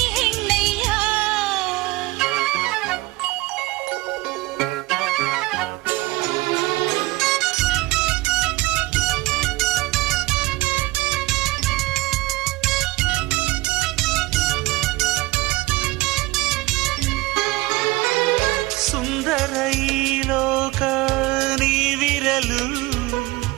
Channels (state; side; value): quieter; left; 20.9 dB